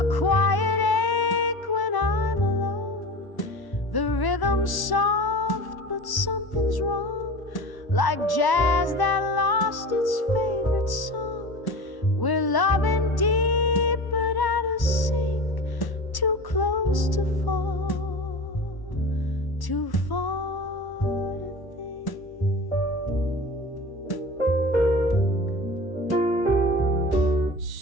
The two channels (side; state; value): right; late; 1.1 ms